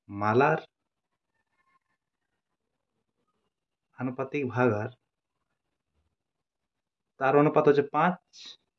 আনুপাতিক ভাগ হার, তার অনুপাত হচ্ছে 5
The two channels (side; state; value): both; identical; correlation 1.00